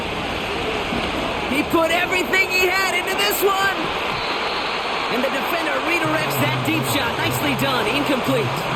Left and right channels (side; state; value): both; identical; correlation 1.00